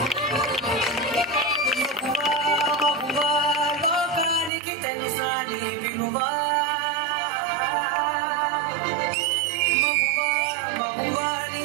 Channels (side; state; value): left; drops out; at 4.5 s